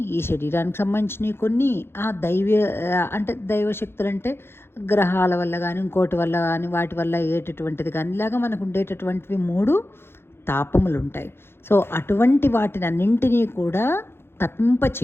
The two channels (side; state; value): right; late; 0.11 ms